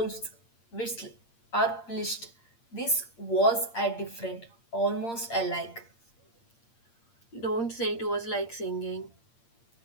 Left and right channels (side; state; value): right; late; 8.7 ms